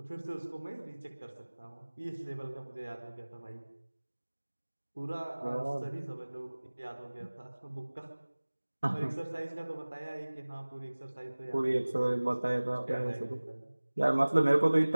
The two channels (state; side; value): inverted; both; correlation -1.00